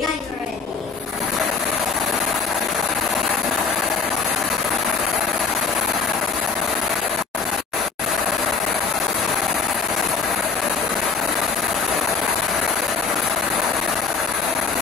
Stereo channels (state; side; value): quieter; right; 5.0 dB